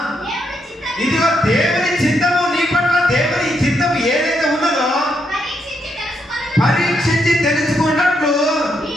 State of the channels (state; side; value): normal; both; correlation 0.78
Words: ఇదిగో దేవుని చిత్తము నీ పట్ల దేవుని చిత్తము ఏదైతే ఉన్నదో పరీక్షించి తెలుసుకున్నట్లు